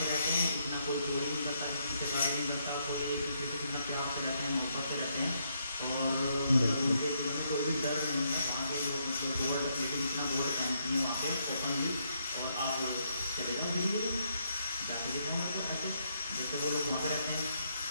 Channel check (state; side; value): inverted; both; correlation -0.76